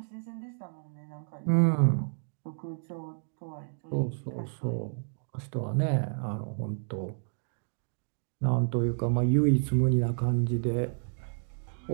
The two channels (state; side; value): silent; left; digital silence